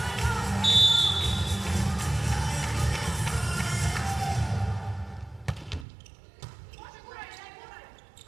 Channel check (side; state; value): left; drops out; at 5.9 s